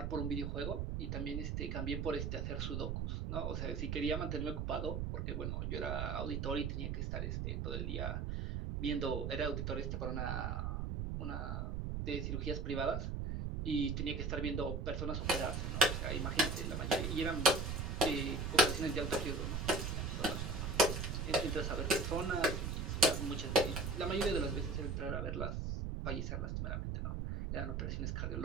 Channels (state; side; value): noise; right; rumble, 1 dB below the sound